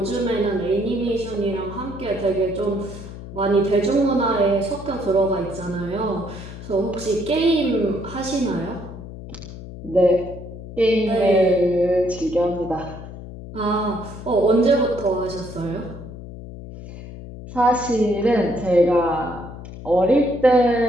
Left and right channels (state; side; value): noise; left; hum, 13 dB below the sound